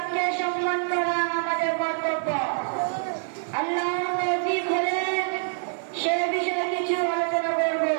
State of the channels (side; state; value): left; silent; 61 dB below the other